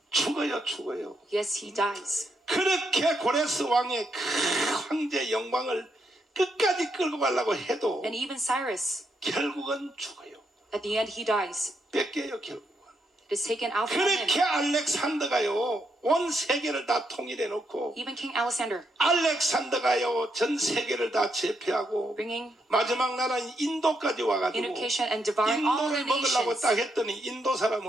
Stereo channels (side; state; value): both; normal; correlation 0.79